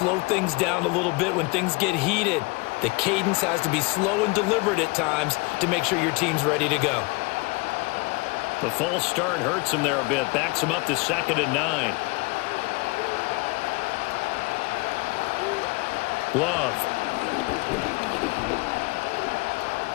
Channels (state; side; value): quieter; right; 26.2 dB